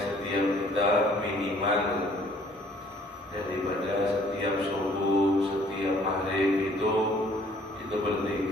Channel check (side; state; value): both; normal; correlation 0.59